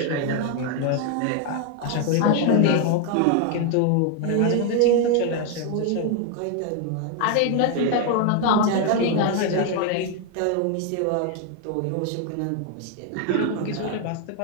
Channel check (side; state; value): both; different; correlation 0.01